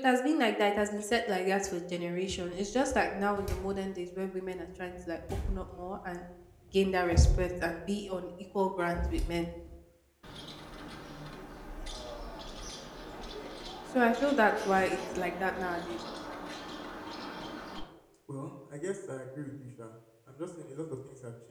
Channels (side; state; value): both; identical; correlation 1.00